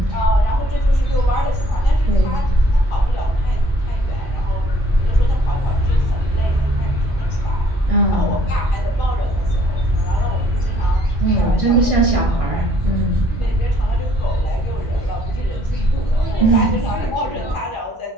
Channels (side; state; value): both; normal; correlation 0.62